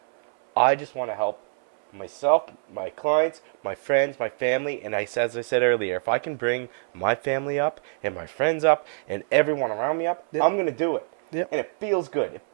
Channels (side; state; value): left; silent; 60 dB below the other